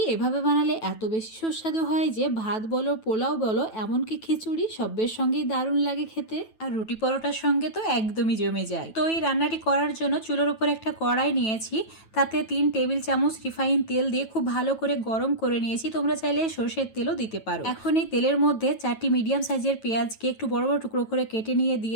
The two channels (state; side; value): late; right; 9.2 ms